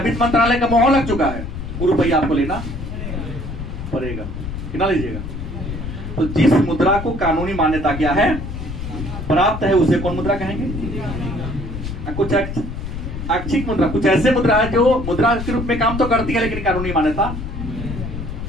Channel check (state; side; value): noise; left; rumble, 7 dB below the sound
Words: वित्त मंत्रालय का मोहर लग चुका है, वो रुपया आपको लेना पड़ेगा कि ना लीजिएगा। तो जिस मुद्रा को कानूनी मान्यता क्या है प्राप्त है, उसे कौन मुद्रा कहेंगे? कुछ ऐच्छिक मुद्रा, कुछ ऐसे मुद्रा है जो मुद्रा के रूप में काम तो करती है लेकिन कानूनी मान्यता।